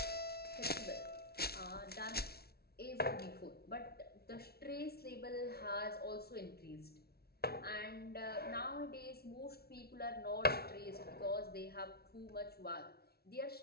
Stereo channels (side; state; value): right; late; 0.45 ms